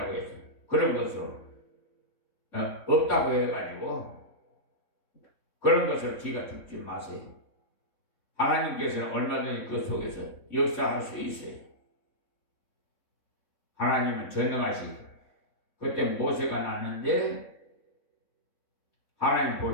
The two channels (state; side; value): late; right; 3.6 ms